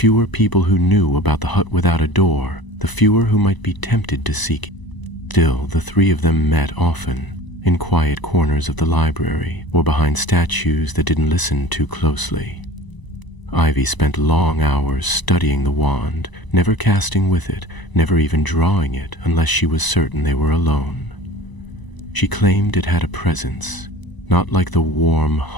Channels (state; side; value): late; right; 1.0 ms